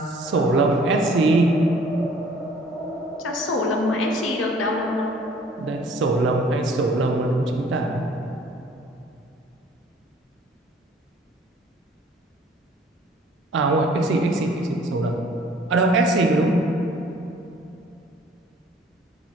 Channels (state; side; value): normal; both; correlation 0.55